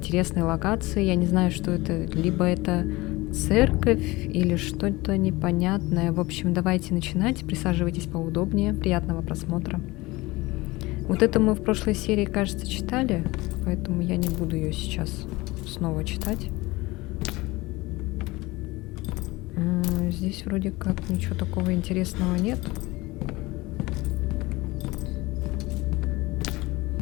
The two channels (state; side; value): quieter; right; 21.3 dB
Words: локации. Я не знаю, что это. Либо это церковь или что-то непонятное. В общем, давайте начинать. Присаживайтесь поудобнее. Приятного просмотра. Вот это мы в прошлой серии, кажется, читали, поэтому я не буду ее сейчас снова читать. Здесь вроде как ничего такого интересного нет.